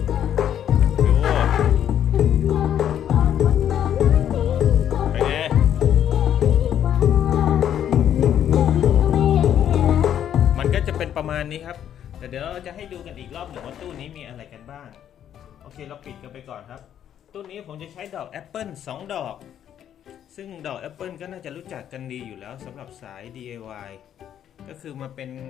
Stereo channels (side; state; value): right; quieter; 10.0 dB